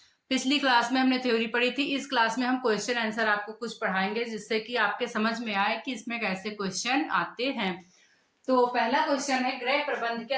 पिछली क्लास में हमने थ्योरी पढ़ी थी। इस क्लास में हम क्वेश्चन आंसर आपको कुछ पढ़ाएंगे जिससे कि आपके समझ में आए कि इसमें कैसे क्वेश्चन आते हैं। तो पहला क्वेश्चन है, गृह प्रबंध के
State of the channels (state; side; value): identical; both; correlation 1.00